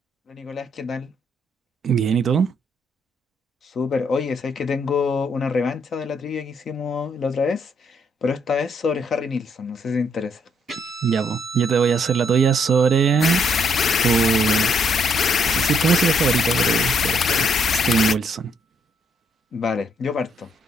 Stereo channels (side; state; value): both; normal; correlation 0.71